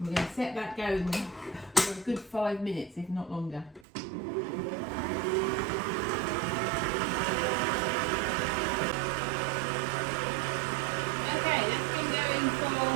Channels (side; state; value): left; drops out; at 3.9 s